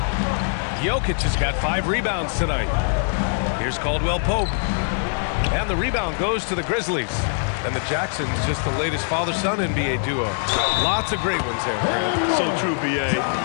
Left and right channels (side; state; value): right; silent; digital silence